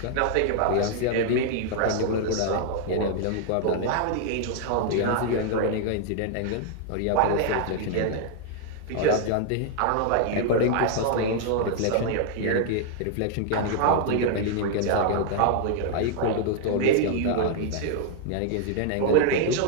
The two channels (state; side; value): different; both; correlation 0.00